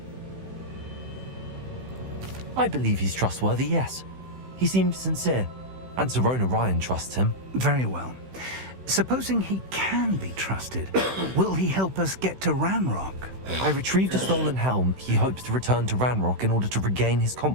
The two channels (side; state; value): left; late; 16 ms